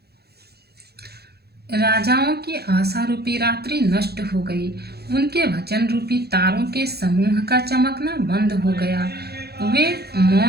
राजाओं की आशा रूपी रात्रि नष्ट हो गई। उनके वचन रूपी तारों के समूह का चमकना बंद हो गया। वे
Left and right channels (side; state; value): left; late; 0.47 ms